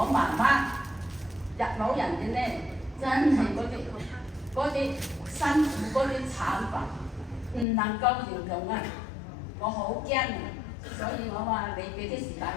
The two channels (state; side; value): drops out; right; at 7.7 s